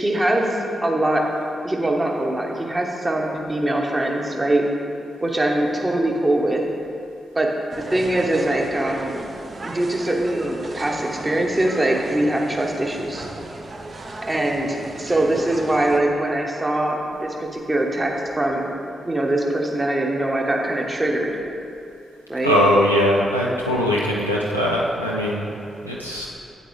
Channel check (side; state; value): both; normal; correlation 0.82